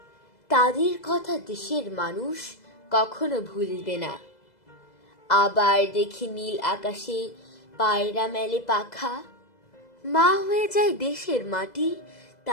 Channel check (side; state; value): right; late; 2.0 ms